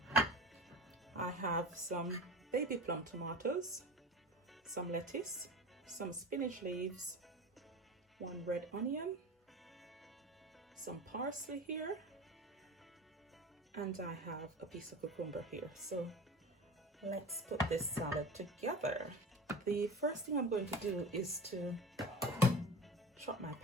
I have some baby plum tomatoes, some lettuce, some spinach leaves, 1 red onion, some parsley here, and I have a piece of cucumber here. So let's put this salad together. The first thing I'm going to do is to chop my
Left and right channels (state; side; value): normal; both; correlation 0.32